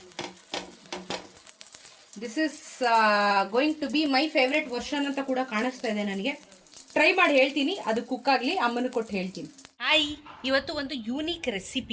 This is going to be my favourite version ಅಂತ ಕೂಡ ಕಾಣಿಸ್ತಾ ಇದೆ ನನಗೆ. ಟ್ರೈ ಮಾಡಿ ಹೇಳ್ತೀನಿ, ಅದು ಕುಕ್ ಆಗಲಿ, ಅಮ್ಮನ ಕೊಟ್ಟು ಹೇಳ್ತೀನಿ. ಹಾಯ್, ಇವತ್ತು ಒಂದು ಯೂನಿಕ್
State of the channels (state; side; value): identical; both; correlation 1.00